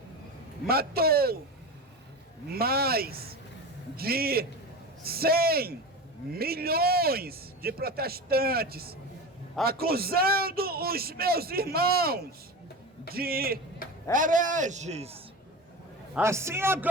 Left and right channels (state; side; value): normal; both; correlation 0.27